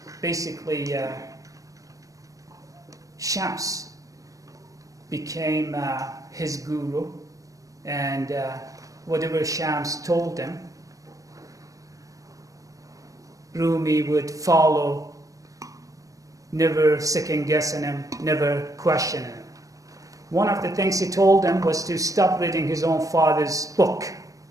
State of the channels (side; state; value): left; late; 0.16 ms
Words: basically Shams became his guru, and whatever Shams told him, Rumi would follow, never second guessing him, never questioning him. One of the things he told him was to stop reading his own father's book,